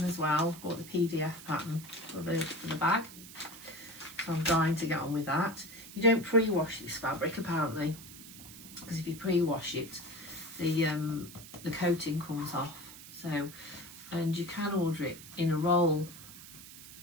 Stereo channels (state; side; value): noise; right; hiss, 15 dB below the sound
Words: as well. Bought the PDF pattern for the bag. So I'm dying to get on with that. You don't pre-wash this fabric apparently, because if you pre-wash it, the coating comes off. So, and you can order it in a roll,